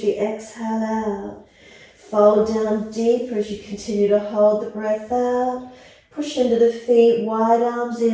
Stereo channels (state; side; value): identical; both; correlation 1.00